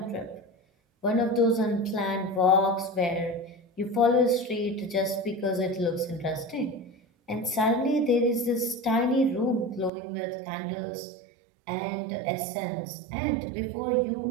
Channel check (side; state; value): left; drops out; at 9.9 s